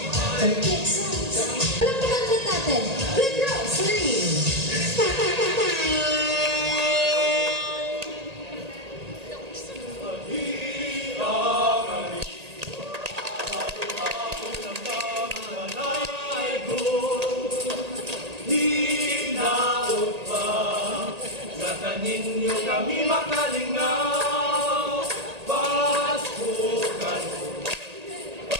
Complete sounds. Alam mo kanta natin. Red Rose, ready? Ninyo kami makalingaw, pasukan.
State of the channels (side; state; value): left; late; 1.8 ms